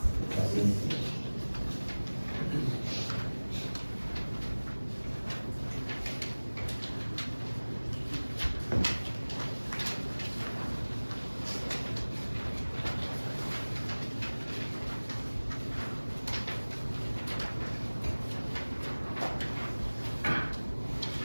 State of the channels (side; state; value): both; inverted; correlation -1.00